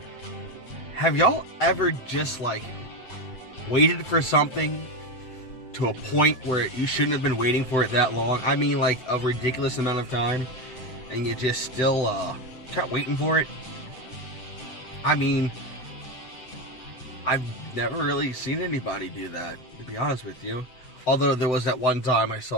Have y'all ever just waited for something to a point where you shouldn't have been waiting for it that long? I mean, like a ridiculous amount of time, and you just still kept waiting for it? I mean, I've never really seen anybody do that, to be honest with you. Although there was that one time I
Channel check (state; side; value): late; right; 7.9 ms